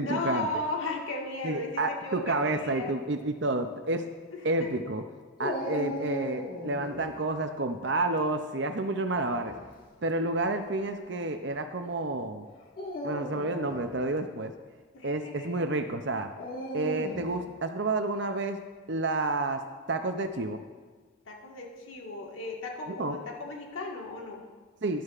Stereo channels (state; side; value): normal; both; correlation -0.04